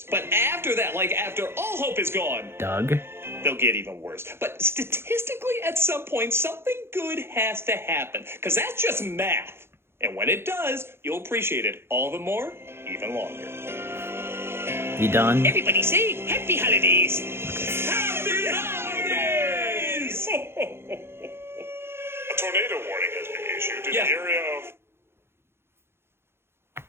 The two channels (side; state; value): left; late; 0.12 ms